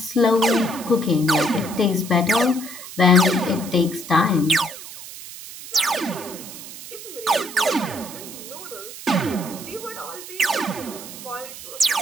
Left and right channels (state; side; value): noise; right; hiss, 13 dB below the sound